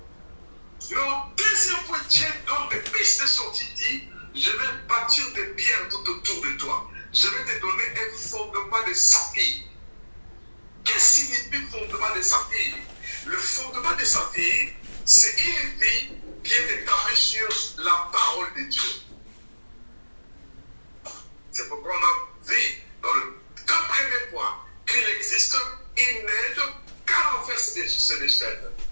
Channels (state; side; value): inverted; both; correlation -1.00